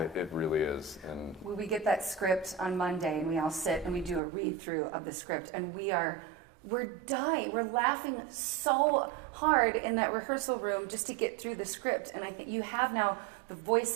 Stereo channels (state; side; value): drops out; left; at 4.2 s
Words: It really is. And we get that script on Monday, and we all sit and we do a read through of the script, and we're dying. We're laughing so hard in that rehearsal room just to get through the script. And I think you have now the